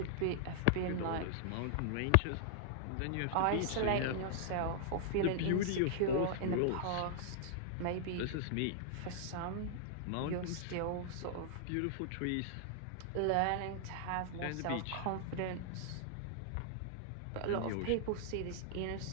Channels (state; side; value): different; both; correlation -0.01